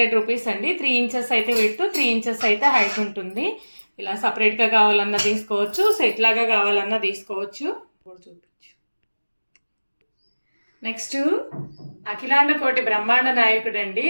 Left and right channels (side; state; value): both; inverted; correlation -1.00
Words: రూపీస్ అండి. 3 ఇంచెస్ అయితే విడ్త్, 3 ఇంచెస్ అయితే హైట్ ఉంటుంది. ఇలా సపరేట్గా కావాలన్నా తీసుకోవచ్చు, సెట్ లాగా కావాలన్నా తీసుకోవచ్చు. చూపించు. నెక్స్ట్ అఖిలాండ కోటి బ్రహ్మాండ నాయకుడు అండి,